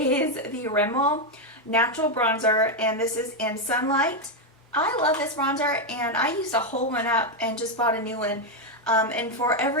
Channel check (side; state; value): both; normal; correlation 0.04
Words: the Rimmel Natural Bronzer, and this is in Sunlight. I love this bronzer, and I used to hold one up and just bought a new one. And for